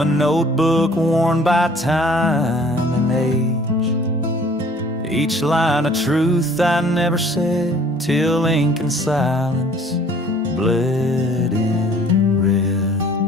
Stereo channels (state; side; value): normal; both; correlation 0.54